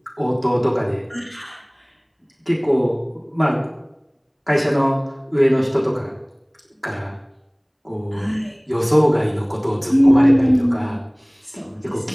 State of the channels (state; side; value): identical; both; correlation 1.00